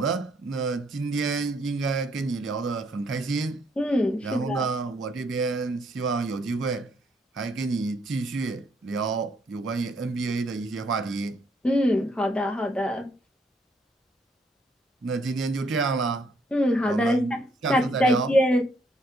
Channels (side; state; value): both; normal; correlation 0.70